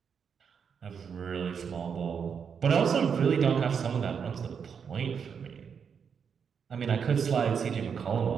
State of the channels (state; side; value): quieter; left; 6.8 dB